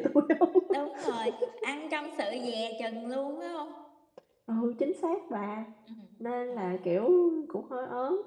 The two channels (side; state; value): both; identical; correlation 1.00